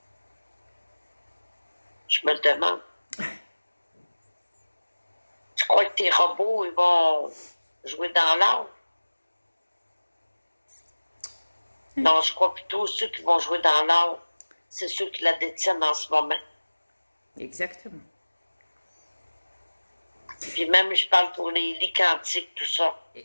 Je me le demande. Tu crois que tes robots, ils vont jouer dans l'or? Non, je crois plutôt ceux qui vont jouer dans l'or, c'est ceux qui la détiennent en ce moment. Exactement. Puis même, je parle pour les lits quantiques, tout ça.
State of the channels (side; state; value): both; inverted; correlation -1.00